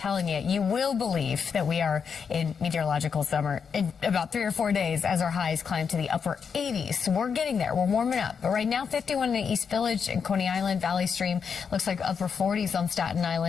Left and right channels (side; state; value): right; quieter; 6.4 dB